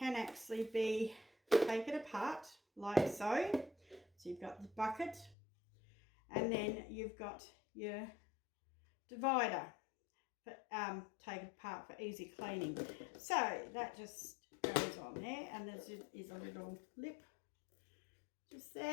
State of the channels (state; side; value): drops out; right; at 5.4 s